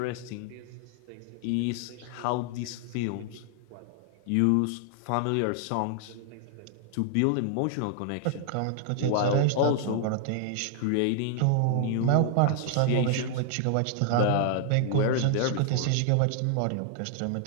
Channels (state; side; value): different; both; correlation -0.01